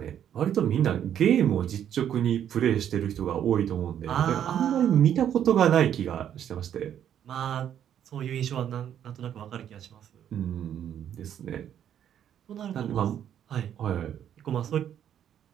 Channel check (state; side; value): quieter; left; 9.8 dB